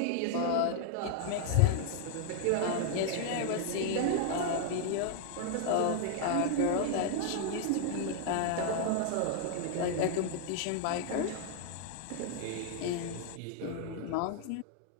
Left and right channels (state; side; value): different; both; correlation 0.00